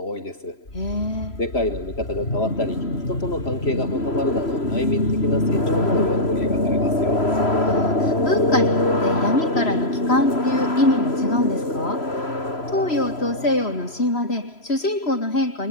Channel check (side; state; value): right; late; 3.0 ms